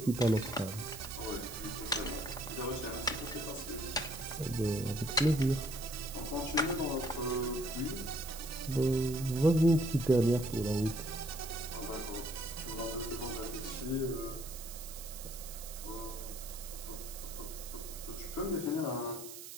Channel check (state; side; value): noise; right; hiss, 11 dB below the sound